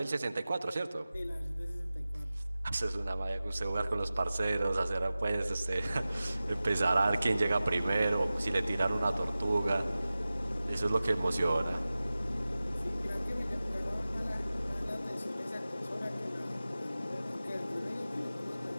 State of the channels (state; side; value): inverted; both; correlation -0.96